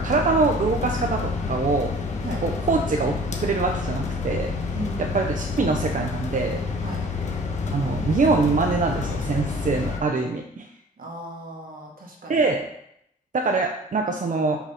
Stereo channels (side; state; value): both; normal; correlation 0.47